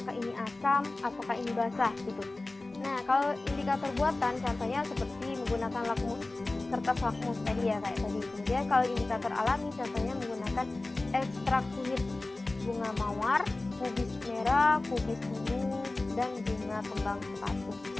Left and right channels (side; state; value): right; quieter; 3.0 dB